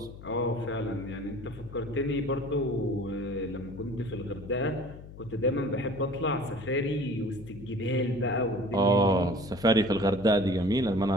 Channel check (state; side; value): noise; left; hum, 15 dB below the sound